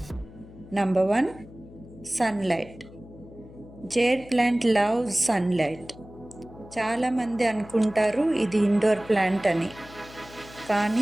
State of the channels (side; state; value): left; noise; hum, 19 dB below the sound